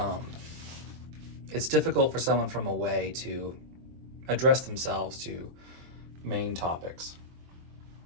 it's difficult for someone from away to address themselves to Maine topics.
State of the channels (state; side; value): late; left; 23 ms